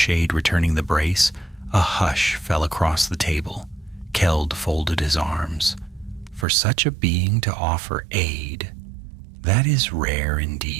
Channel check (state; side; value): drops out; left; at 6.5 s